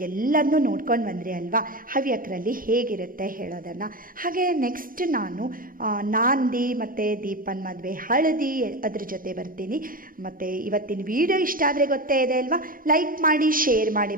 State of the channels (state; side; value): late; left; 0.41 ms